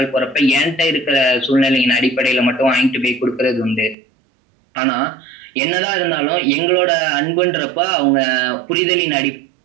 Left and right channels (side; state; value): left; drops out; at 4.0 s